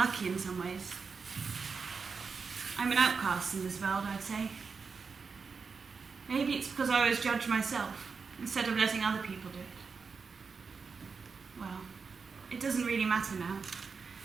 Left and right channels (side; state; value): left; quieter; 5.2 dB